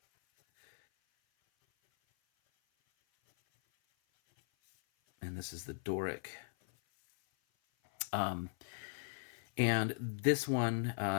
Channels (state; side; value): silent; right; 53 dB below the other